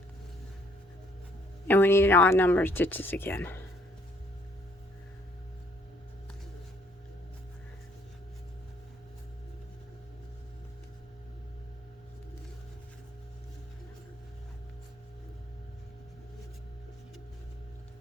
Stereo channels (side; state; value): both; normal; correlation 0.64